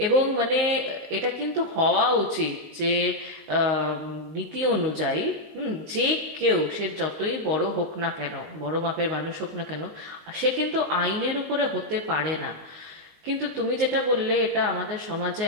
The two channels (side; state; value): left; late; 19 ms